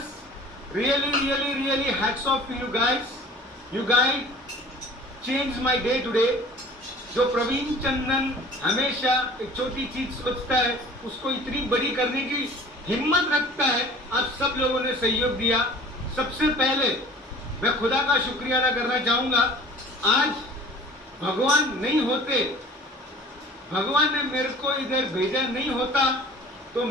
Really hats off to you guys. You guys changed my day today. जो प्रवीण चंदन हमेशा एक छोटी चीज सोचता है उसको इतनी बड़ी करने की हिम्मत रखता है, आप सब लोगों ने सहयोग दिया। सबसे पहले मैं खुदा का शुक्रिया अदा करना चाहूंगा। आज भगवान नहीं होते, भगवान ने मेरे को इधर भेजा नहीं होता तो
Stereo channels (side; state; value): both; normal; correlation 0.46